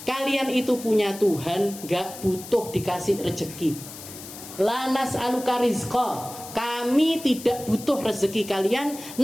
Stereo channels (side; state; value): left; noise; hiss, 14 dB below the sound